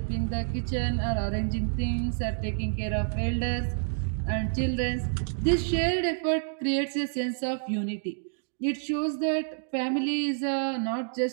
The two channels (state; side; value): silent; left; digital silence